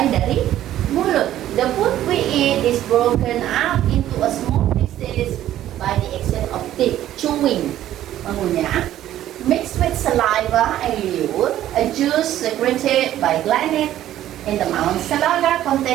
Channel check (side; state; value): left; quieter; 12.7 dB